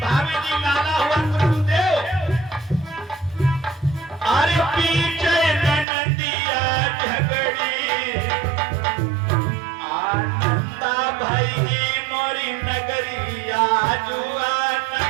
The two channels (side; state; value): left; drops out; at 5.9 s